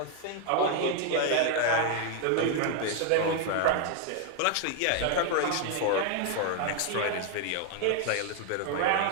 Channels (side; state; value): both; different; correlation 0.00